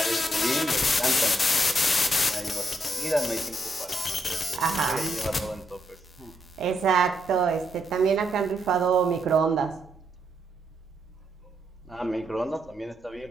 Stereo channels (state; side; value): normal; both; correlation 0.78